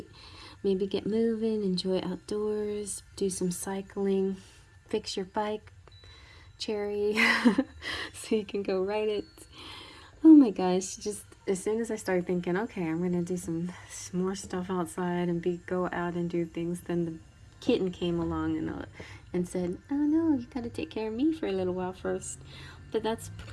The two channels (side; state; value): both; identical; correlation 1.00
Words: maybe get moving, enjoy outdoors, do some cycling, fix your bike, Cherry, so you can go ride it. Oh my gosh, just as soon as I started thinking, okay, I'm gonna do some more stuff outside and go out and do things, then the kitten came along and said, oh no, you gotta take care of me for a little while first. But that's